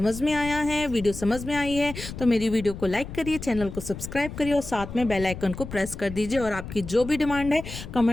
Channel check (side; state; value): left; noise; rumble, 10 dB below the sound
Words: में आया है, वीडियो समझ में आई है तो मेरी वीडियो को लाइक करिए, चैनल को सब्सक्राइब करिए और साथ में बेल आइकन को प्रेस कर दीजिए। और आपकी जो भी डिमांड है